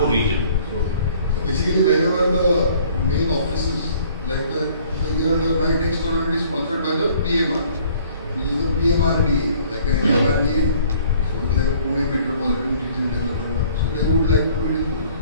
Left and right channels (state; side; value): inverted; both; correlation -0.56